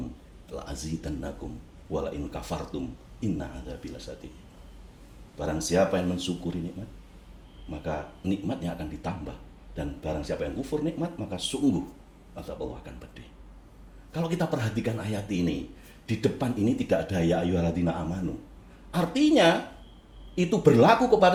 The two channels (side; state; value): both; identical; correlation 1.00